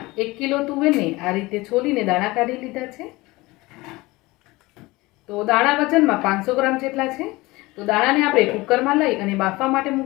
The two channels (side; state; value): right; quieter; 21.3 dB